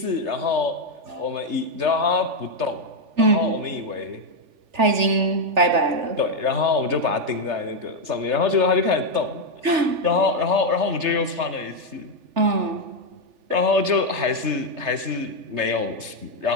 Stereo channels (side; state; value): left; late; 3.3 ms